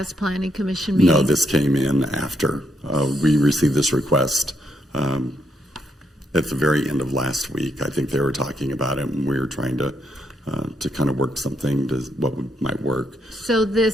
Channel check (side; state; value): both; normal; correlation 0.76